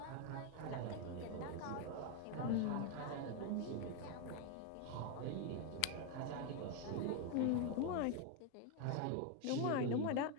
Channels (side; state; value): both; different; correlation 0.01